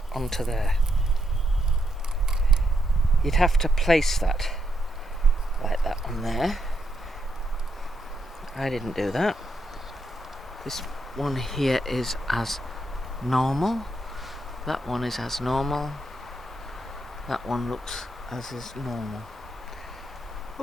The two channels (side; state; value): both; normal; correlation 0.80